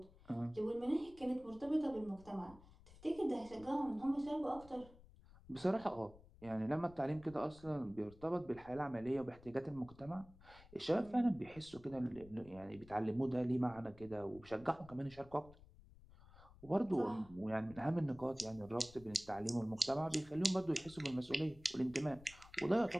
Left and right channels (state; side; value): noise; left; rumble, 21 dB below the sound